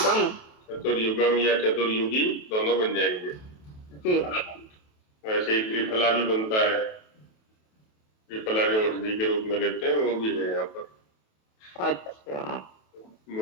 चतुर्युगम या चतुर्युगी दोनों बन जाएंगे जी। वैसे ही त्रिफला भी बनता है, त्रिफला जो औषधि के रूप में लेते हैं वो भी है यहाँ पर। अच्छा,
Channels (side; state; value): right; late; 28 ms